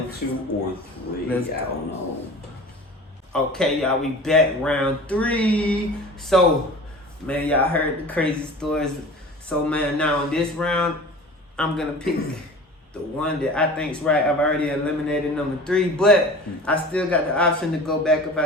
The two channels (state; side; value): normal; both; correlation 0.39